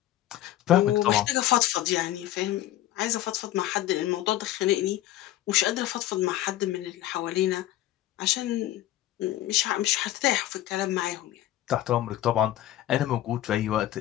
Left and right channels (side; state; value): right; quieter; 13.9 dB